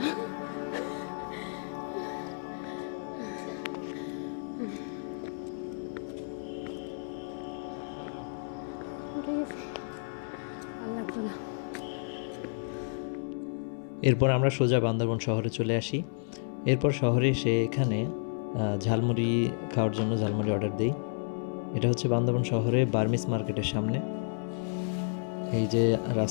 উঠে গেছে, আর লাগছে না। এরপর আমরা সোজা বান্দরবন শহরে চলে আসি। এরপর শহরে এসে এখানে ঝালমুড়ি খাওয়ার জন্য ঝালমুড়ি অর্ডার দিই। এটা হচ্ছে বান্দরবন শহরে বার্মিস মার্কেটের সামনে। এই যে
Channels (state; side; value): silent; right; 57 dB below the other